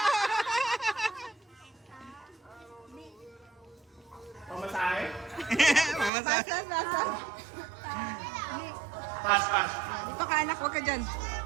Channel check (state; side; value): drops out; left; at 6.1 s